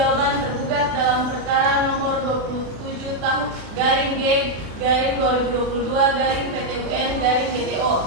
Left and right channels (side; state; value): left; late; 36 ms